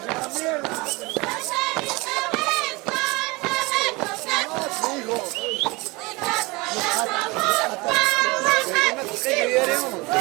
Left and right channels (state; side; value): quieter; left; 24.4 dB